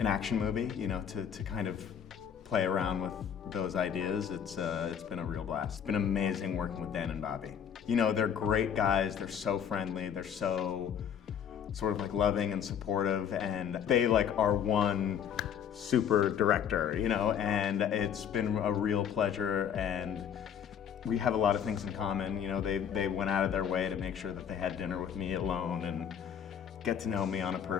action movie, you know, to kind of play around with those ideas. It's been a real blast. It's been amazing working with Dan and Bobby. You know, they're great guys, they're so friendly, they're so sort of like loving and supportive, and they like are one super director, you know, and it's been a real pleasure, and we have a lot of things in common. You know, they went out of their way to make sure that they had dinner with me alone and get to know me on a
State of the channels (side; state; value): right; quieter; 8.4 dB